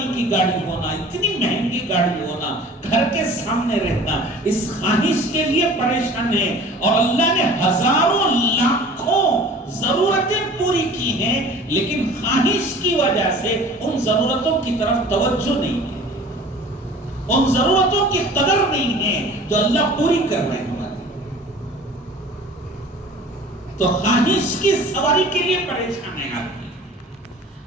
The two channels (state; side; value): normal; both; correlation 0.45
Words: کی گاڑی ہونا, اتنی مہنگی گاڑی ہونا, گھر کے سامنے رہنا, اس خواہش کے لیے پریشان ہے. اور اللہ نے ہزاروں لاکھوں ضرورتیں پوری کی ہیں, لیکن خواہش کی وجہ سے ان ضرورتوں کی طرف توجہ نہیں ہے, ان ضرورتوں کی قدر نہیں ہے جو اللہ پوری کر رہے ہیں. تو خواہش کی سواری کے لیے پریشان ہے آدمی,